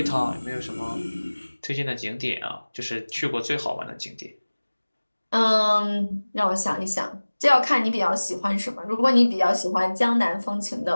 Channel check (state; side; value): inverted; both; correlation -1.00